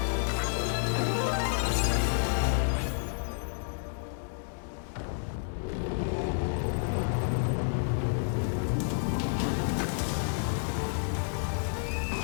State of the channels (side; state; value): right; silent; digital silence